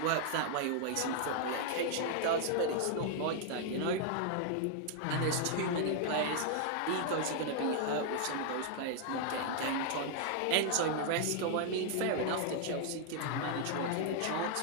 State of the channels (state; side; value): different; both; correlation 0.00